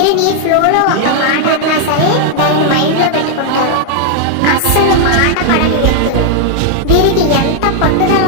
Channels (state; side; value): different; both; correlation 0.00